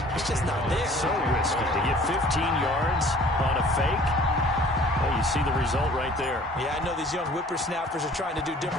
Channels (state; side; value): normal; both; correlation 0.51